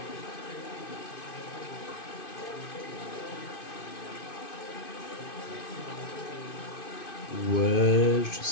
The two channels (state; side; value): late; right; 2.5 ms